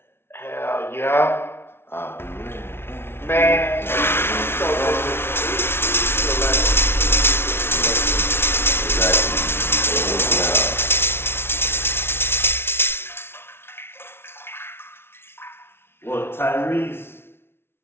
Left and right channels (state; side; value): late; right; 0.12 ms